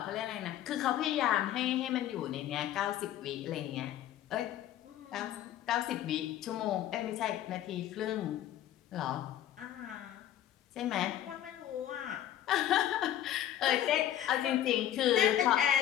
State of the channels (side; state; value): right; quieter; 11.9 dB